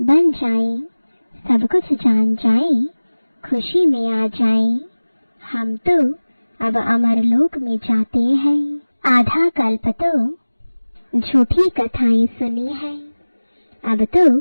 जाए, सब कुछ जान जाए, खुशी में आ जाए। हम तो अब अमरलोक में जाते हैं। आधा कल्प तो झूठी कथाएं सुनी है, अब तो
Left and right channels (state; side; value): inverted; both; correlation -1.00